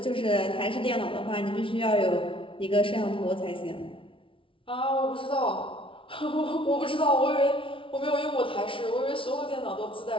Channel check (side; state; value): right; late; 0.25 ms